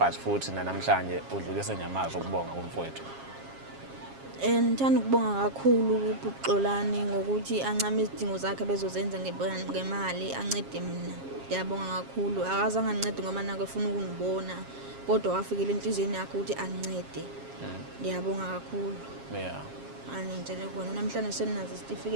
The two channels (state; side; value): late; left; 7.4 ms